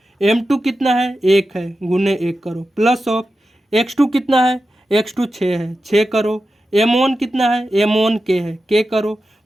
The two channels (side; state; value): both; normal; correlation 0.91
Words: m2 कितना है, 1 है, गुने 1 करो, प्लस ऑफ x2 कितना है, x2 6 है, 6 करो, m1 कितना है, m1 k है, k करो,